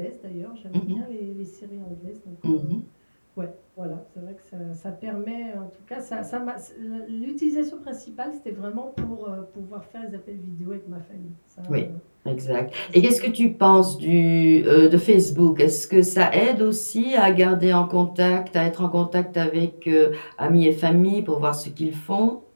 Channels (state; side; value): inverted; both; correlation -1.00